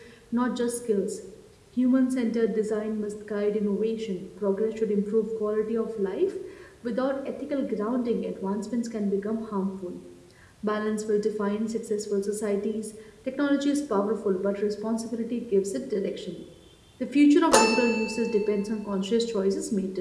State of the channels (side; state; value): both; identical; correlation 1.00